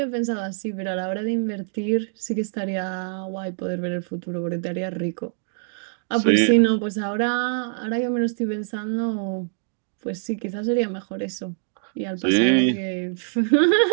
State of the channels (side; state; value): left; silent; digital silence